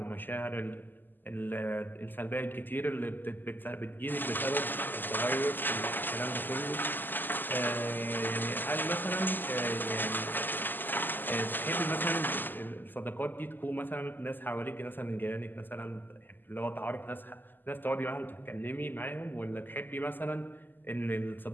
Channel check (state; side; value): late; right; 0.090 ms